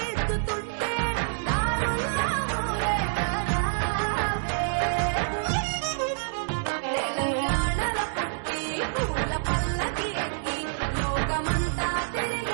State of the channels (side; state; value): left; silent; 60 dB below the other